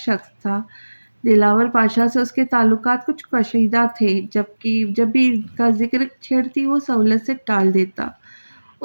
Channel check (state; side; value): inverted; both; correlation -1.00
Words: تھا۔ دلاور پاشا سے اس کے تعلقات کچھ کشیدہ تھے، جبکہ جب بھی ان کا ذکر چھیڑتی وہ سہولت سے ٹال دیتا۔